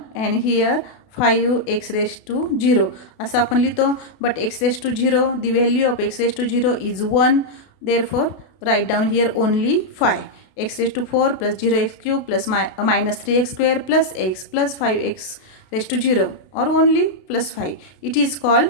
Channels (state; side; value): late; right; 32 ms